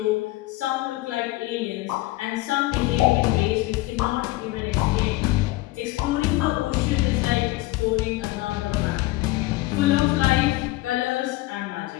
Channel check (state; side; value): quieter; right; 19.2 dB